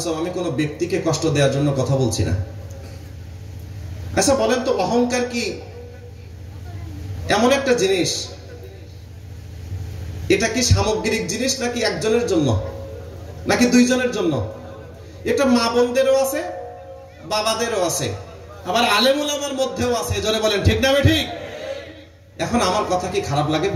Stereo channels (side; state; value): both; identical; correlation 1.00